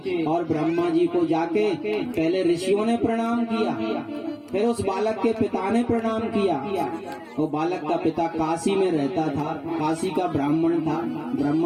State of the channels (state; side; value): identical; both; correlation 1.00